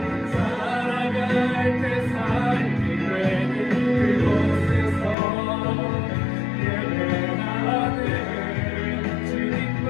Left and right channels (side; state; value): right; drops out; at 5.2 s